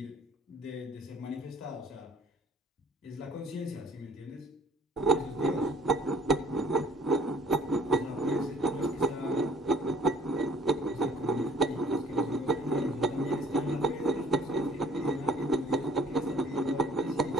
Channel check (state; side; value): normal; both; correlation 0.56